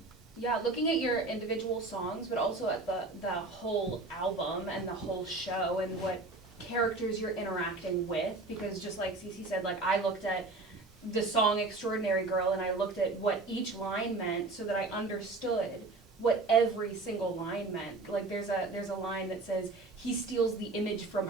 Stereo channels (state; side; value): quieter; left; 3.4 dB